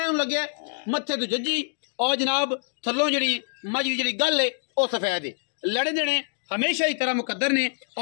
लगे मत्थे तो जज्जी और जनाब थलों जी मज की जी गल है वह सफेद है। लड़े देने हमेशा ही तरह मुकद्दर ने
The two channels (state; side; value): silent; right; digital silence